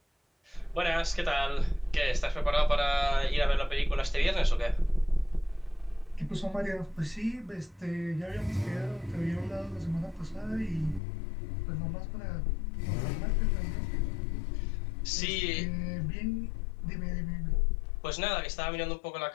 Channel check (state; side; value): drops out; right; at 11.0 s